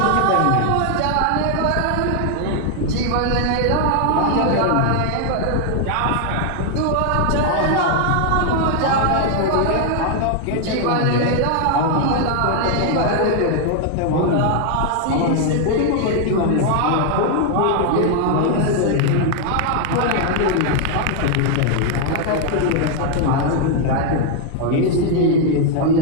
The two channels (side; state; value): both; different; correlation 0.00